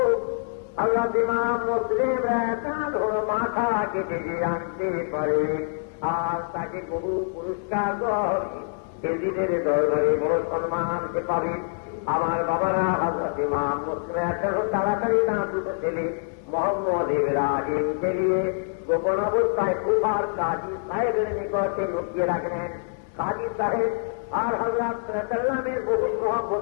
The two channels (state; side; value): silent; right; digital silence